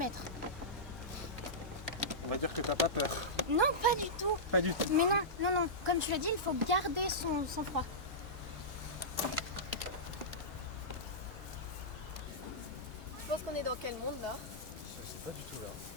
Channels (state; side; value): normal; both; correlation -0.14